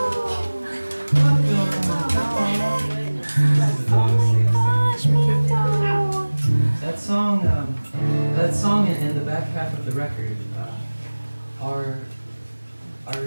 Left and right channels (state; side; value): inverted; both; correlation -1.00